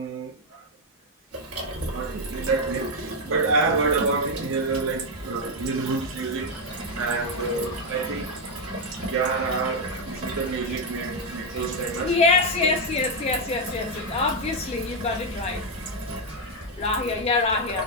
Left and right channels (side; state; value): both; normal; correlation 0.03